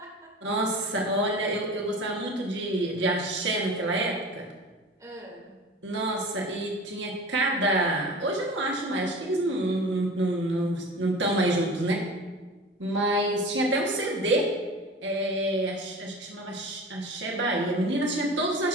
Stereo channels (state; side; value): normal; both; correlation 0.36